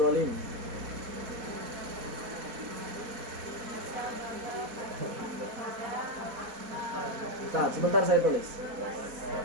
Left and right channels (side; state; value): left; late; 4.2 ms